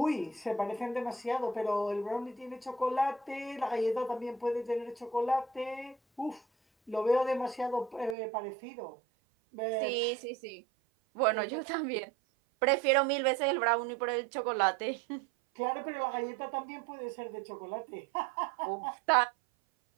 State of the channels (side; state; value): left; drops out; at 8.2 s